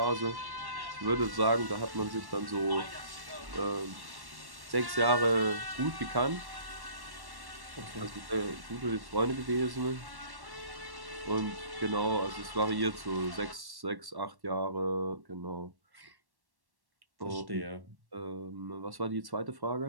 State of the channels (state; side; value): late; left; 1.1 ms